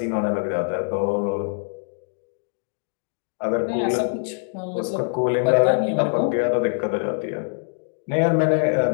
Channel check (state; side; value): silent; right; digital silence